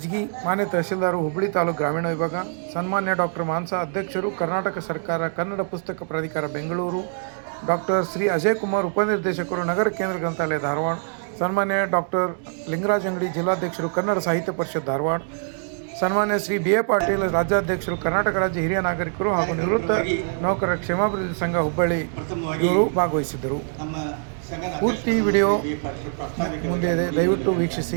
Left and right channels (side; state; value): left; silent; digital silence